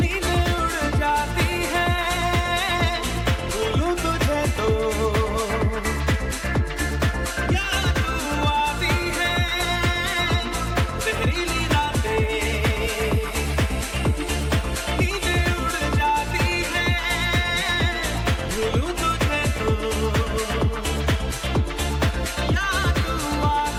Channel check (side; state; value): both; identical; correlation 1.00